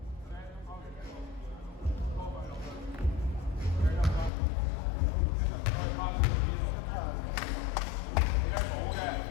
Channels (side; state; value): right; drops out; at 4.3 s